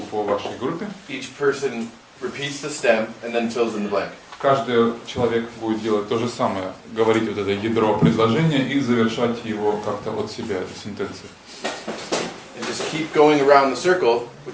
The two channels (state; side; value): identical; both; correlation 1.00